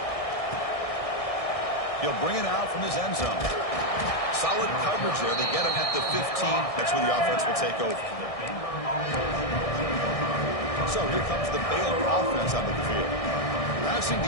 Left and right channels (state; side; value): late; right; 1.6 ms